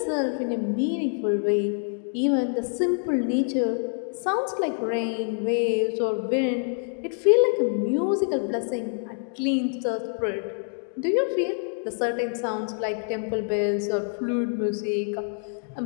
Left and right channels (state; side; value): silent; right; 61 dB below the other